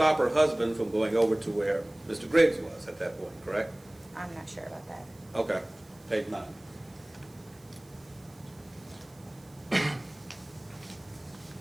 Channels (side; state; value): right; noise; hiss, 28 dB below the sound